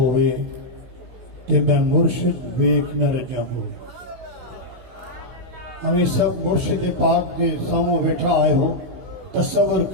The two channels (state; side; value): late; left; 16 ms